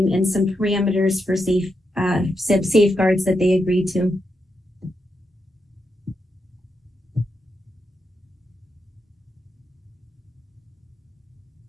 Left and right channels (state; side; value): normal; both; correlation 0.84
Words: and some parameters for safeguards that they agreed to.